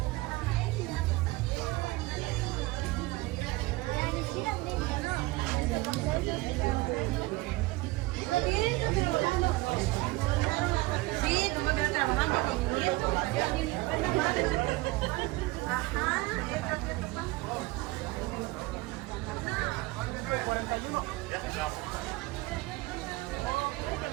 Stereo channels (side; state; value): left; quieter; 21.1 dB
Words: Sí, tú me quedas trabajando con tu nieto. Ajá.